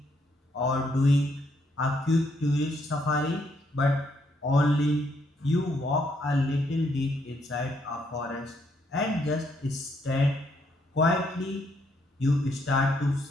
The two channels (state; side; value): normal; both; correlation 0.73